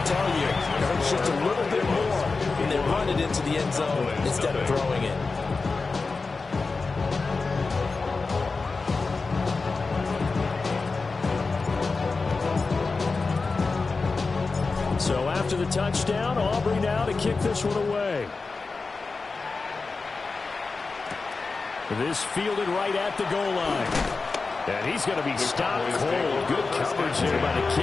tell you, it hurts just a little bit more when they run it into the end zone instead of throwing it. So after the touchdown, Aubrey now to kick this one away. This fielded right at the goal line. And he's going to be stopped cold. Good coverage here by the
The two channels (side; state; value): right; quieter; 4.1 dB